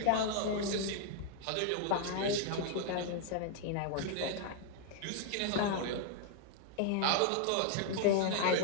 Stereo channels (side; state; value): both; different; correlation 0.00